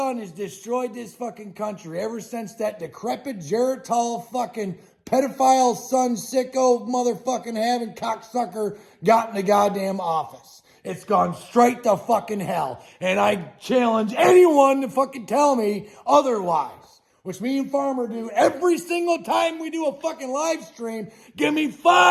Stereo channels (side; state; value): both; identical; correlation 1.00